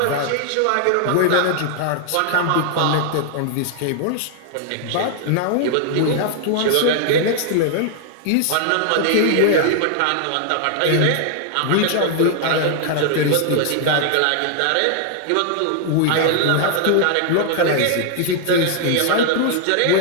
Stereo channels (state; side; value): different; both; correlation 0.00